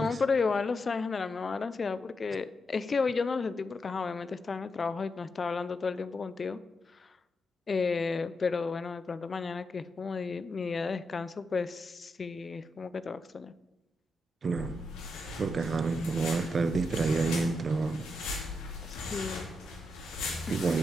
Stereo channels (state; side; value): normal; both; correlation 0.84